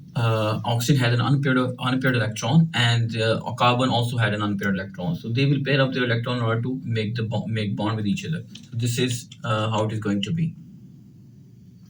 had an unpaired electron, and carbon also had an unpaired electron. So they will pair up their electron in order to make bond with each other. So this is how it is going to be.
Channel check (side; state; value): both; identical; correlation 1.00